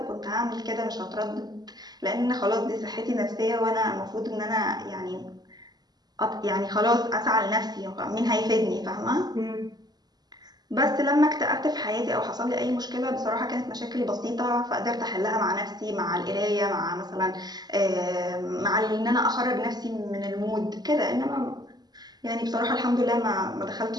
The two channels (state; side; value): late; left; 0.20 ms